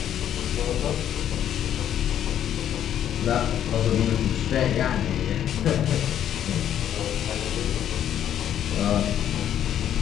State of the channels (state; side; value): quieter; right; 10.3 dB